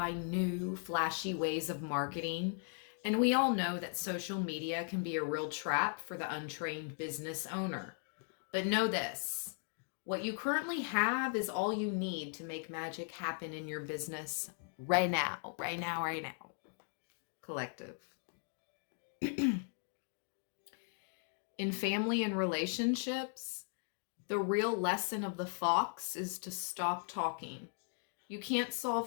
new, flashy ways of marketing. And we all know that social media can be a real trap for the untrained business owner. But know this, what you currently have is all you need to make magic happen in your business right now, right now, right now. Collective. In family and relationships, the real lesson of the fox is to stop talking. You can't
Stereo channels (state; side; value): silent; right; 52 dB below the other